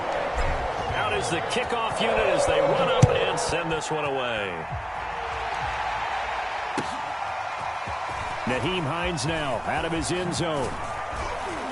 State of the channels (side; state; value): both; identical; correlation 1.00